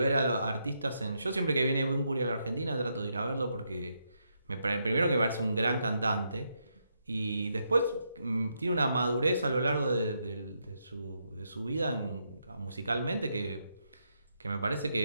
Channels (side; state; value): both; inverted; correlation -0.80